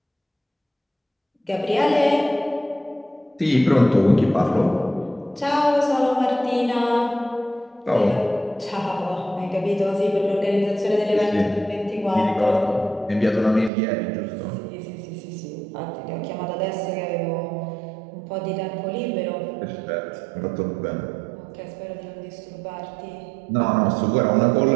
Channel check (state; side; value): drops out; left; at 13.7 s